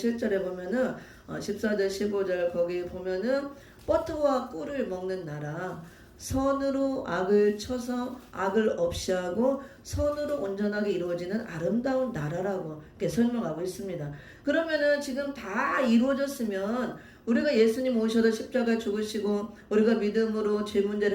보면은 14절 15절 거기 보면은 버터와 꿀을 먹는 나라, 선으로 악을 쳐서 악을 없이 하고 선으로 온전하게 이루어지는 아름다운 나라라고 이렇게 설명하고 있습니다. 그러면은 지금 다 이루어졌으면 우리가 예수님 오셔서 십자가에 죽으시고 우리가 믿음으로 죄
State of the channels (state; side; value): identical; both; correlation 1.00